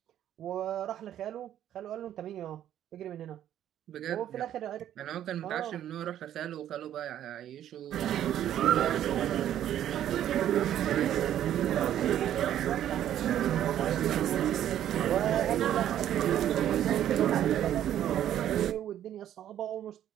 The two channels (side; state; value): left; quieter; 11.2 dB